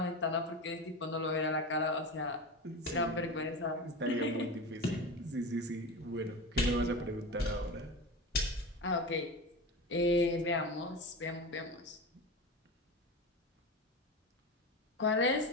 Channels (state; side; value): normal; both; correlation 0.26